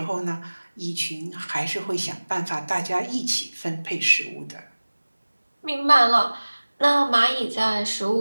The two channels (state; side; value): inverted; both; correlation -1.00